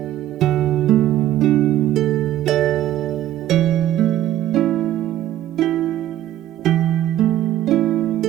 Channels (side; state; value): left; quieter; 13.0 dB